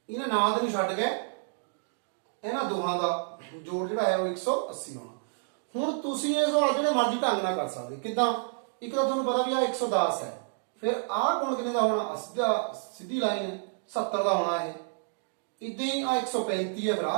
ਇਹਨਾਂ ਨਾਲ ਦੇ ਨੂੰ ਛੱਡ ਕੇ ਇਹਨਾਂ ਦੋਹਾਂ ਦਾ ਜੋੜ ਜਿਹੜਾ ਹੈ ਉਹ 180 ਹੋਣਾ। ਹੁਣ ਤੁਸੀਂ ਇਹ ਸਵਾਲ ਜਿਹੜੇ ਮਰਜ਼ੀ ਢੰਗ ਨਾਲ ਕਰ ਸਕਦੇ। ਕਿੱਦਾਂ? ਇੱਕ ਤਾਂ ਤੁਹਾਨੂੰ ਪਤਾ ਵੀ ਆ 110 ਹੈ, ਫਿਰ ਆਹ ਕੋਣ ਕਿੰਨੇ ਦਾ ਹੋਣਾ? ਸਿੱਧੀ ਲਾਈਨ ਹੈ 70 ਦਾ ਹੋਣਾ। ਇਹ ਇਦਾਂ ਹੀ ਆ 135 ਹੈ, ਫਿਰ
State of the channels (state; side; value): silent; left; digital silence